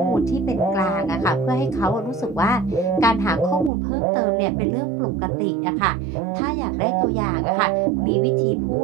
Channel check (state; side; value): drops out; left; at 3.7 s